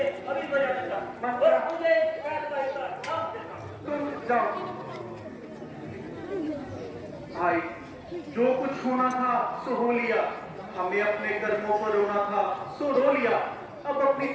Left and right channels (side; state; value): both; identical; correlation 1.00